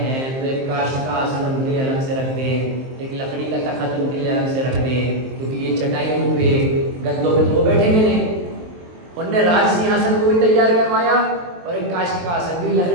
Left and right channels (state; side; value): late; left; 23 ms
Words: तो एक काष्ठ का आसन उनके लिए अलग से रख दें, एक लकड़ी का तख्त उनके लिए अलग से रख दें, क्योंकि ये चटाइयों पे गद्दों पे तो वो बैठेंगे नहीं। उनने राज सिंहासन को भी तैयार करवाया और एक काष्ठ का आसन भी,